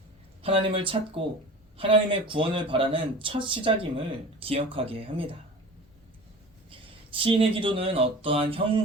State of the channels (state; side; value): normal; both; correlation 0.38